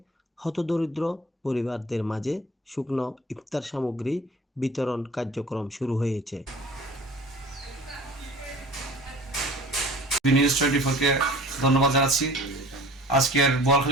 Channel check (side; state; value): both; normal; correlation 0.44